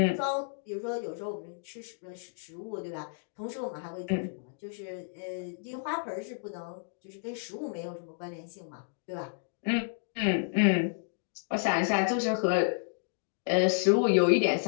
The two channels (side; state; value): right; silent; digital silence